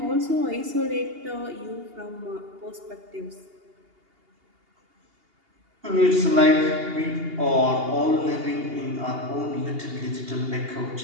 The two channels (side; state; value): left; late; 2.8 ms